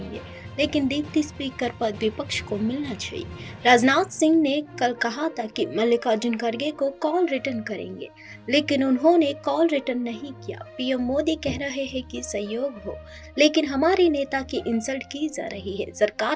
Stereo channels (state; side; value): identical; both; correlation 1.00